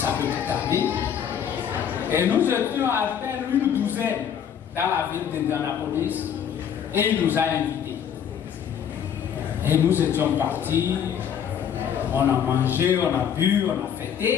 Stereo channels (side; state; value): right; quieter; 8.5 dB